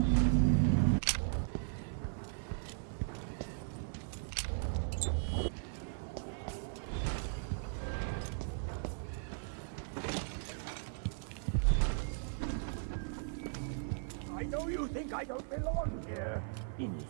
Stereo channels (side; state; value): left; silent; 53 dB below the other